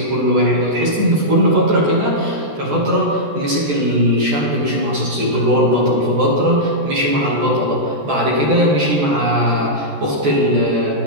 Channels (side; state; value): left; late; 14 ms